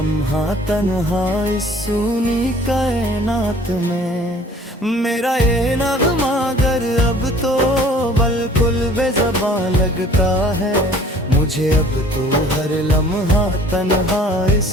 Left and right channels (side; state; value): both; normal; correlation 0.52